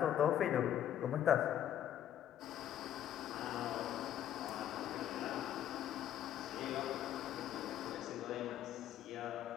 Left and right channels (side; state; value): right; quieter; 11.0 dB